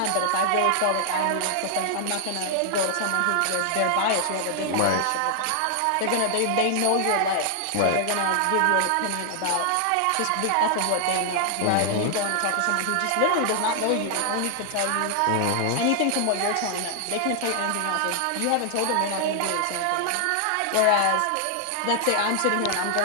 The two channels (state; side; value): different; both; correlation 0.00